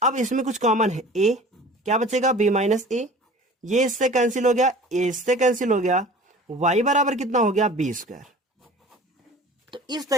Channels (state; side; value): normal; both; correlation 0.43